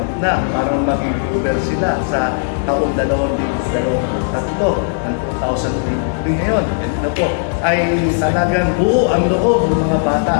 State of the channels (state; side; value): silent; right; 63 dB below the other